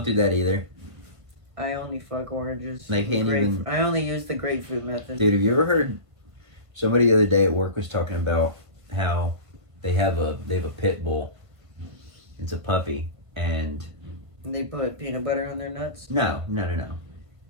do that either. I only fuck oranges. They can't even... I only use the grapefruit method. Dude, have you ever heard... Somebody the other day at work was talking about how they have a pit bull. It's a puppy, and... They put peanut butter on their nuts? No.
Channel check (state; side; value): late; left; 1.5 ms